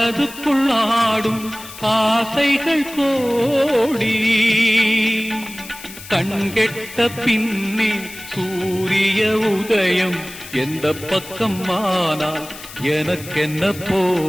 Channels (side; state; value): left; noise; hiss, 15 dB below the sound